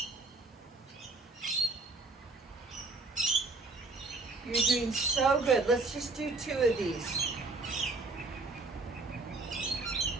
You're doing so good. Let's just do 2 of these.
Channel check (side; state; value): left; quieter; 3.4 dB